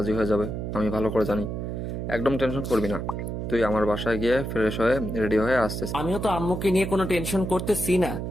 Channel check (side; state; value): right; noise; hum, 4 dB below the sound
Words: হয়ে যাবে, আমি ভালো করে জানি। একদম টেনশন করবি না, তুই আমার বাসায় গিয়ে ফ্রেশ হয়ে রেডি হয়ে আসছিস। আমিও তো আম্মুকে নিয়ে কোনো টেনশন করতেছি না,